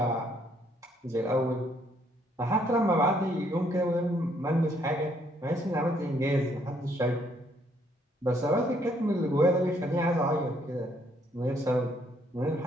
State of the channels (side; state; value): both; normal; correlation 0.69